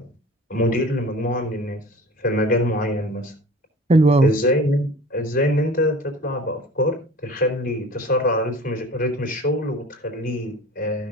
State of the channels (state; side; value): normal; both; correlation 0.41